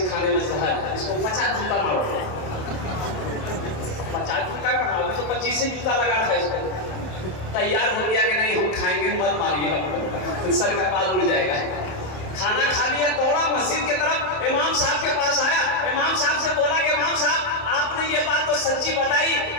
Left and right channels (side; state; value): right; late; 27 ms